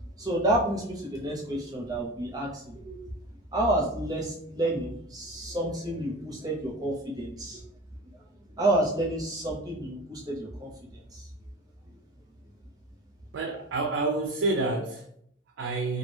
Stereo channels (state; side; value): normal; both; correlation 0.32